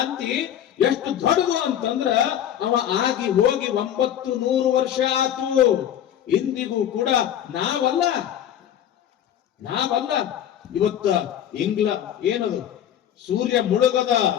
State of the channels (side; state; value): right; quieter; 10.4 dB